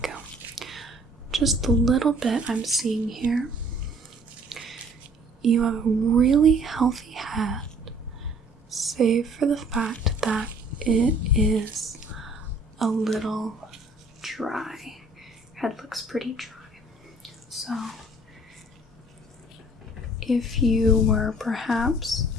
Just the little bit I'm seeing here, you have a really healthy head, save for the fact that it is a little dry. Head looks pretty dry. So, if you were perhaps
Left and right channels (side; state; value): both; normal; correlation 0.56